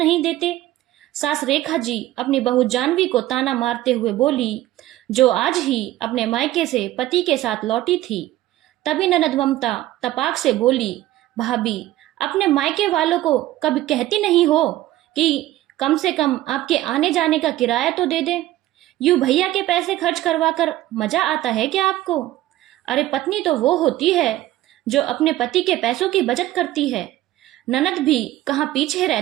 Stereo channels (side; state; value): left; quieter; 15.2 dB